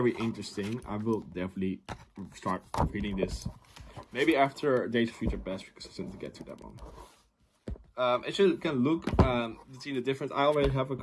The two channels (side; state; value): both; identical; correlation 1.00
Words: interesting. I will definitely start reading this. Maybe after Days of Future Past, because I still need to get to that one. As you can look, see the difference. I already have a